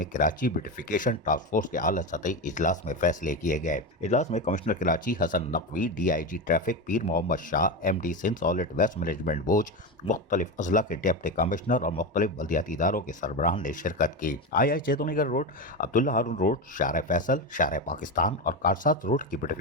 کراچی بیوٹیفیکیشن ٹاسک فورس کے اعلیٰ سطحی اجلاس میں فیصلے کیے گئے۔ اجلاس میں commissioner Karachi Hasan Naqvi, D I G traffic Pir Muhammad Shah, M D Sindh solid waste management بوج، مختلف اضلاع کے ڈپٹی کمشنر اور مختلف بلدیاتی اداروں کے سربراہان نے شرکت کی۔ آئی چیتونی گڑھ روڈ، عبداللہ ہارون روڈ، شارع فیصل، شارع پاکستان اور کارسات روڈ کی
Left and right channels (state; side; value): normal; both; correlation 0.16